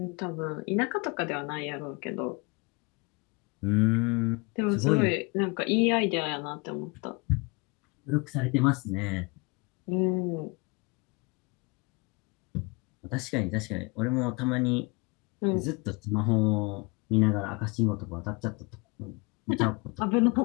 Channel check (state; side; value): quieter; right; 28.2 dB